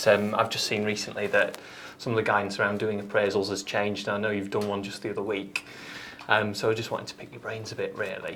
I've just seen recently that some of the guidance around doing appraisals has changed. And I know you've done one just the other week. So I just wanted to pick your brains a bit, really.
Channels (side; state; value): both; identical; correlation 1.00